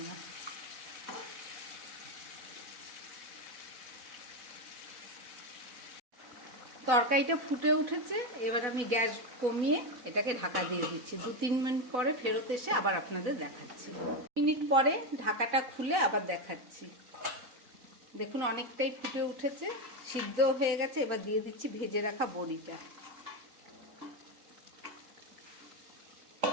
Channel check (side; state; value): left; late; 4.0 ms